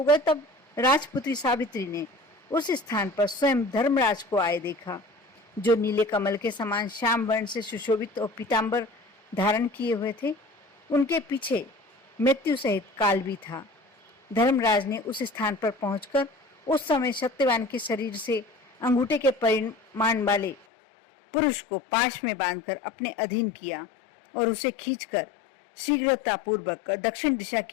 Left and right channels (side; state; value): right; drops out; at 20.6 s